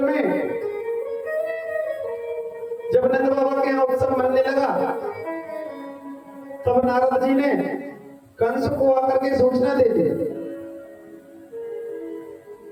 में जब नंद बाबा के यहाँ उत्सव मनने लगा, तब नारद जी ने कंस को आकर के सूचना दे दी,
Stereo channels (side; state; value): both; identical; correlation 1.00